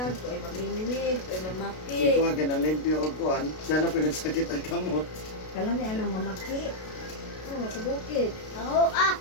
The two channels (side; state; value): right; late; 32 ms